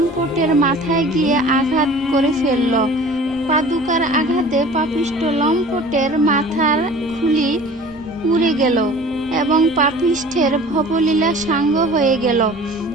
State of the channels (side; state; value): both; normal; correlation 0.44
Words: মাথায় গিয়ে আঘাত করে ফেলল। পাদুকার আঘাতে পাপিষ্ঠ লম্পটের মাথার খুলি উড়ে গেল এবং পাপিষ্ঠের ভবলীলা সাঙ্গ হয়ে গেল।